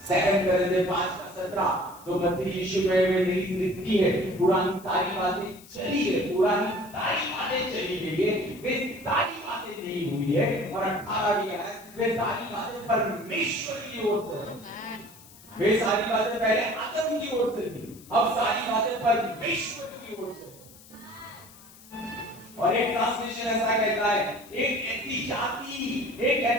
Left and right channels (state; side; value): noise; left; hiss, 22 dB below the sound